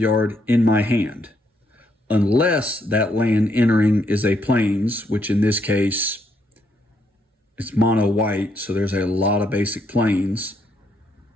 in my hand. Unless that land entering is a plains, which in this case, it's mono white, so there's a lot of basic plains.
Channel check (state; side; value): normal; both; correlation 0.75